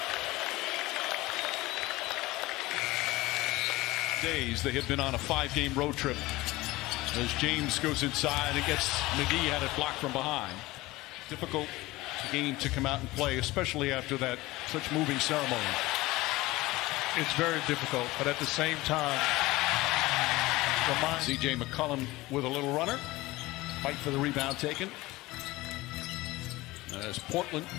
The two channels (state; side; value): quieter; right; 19.7 dB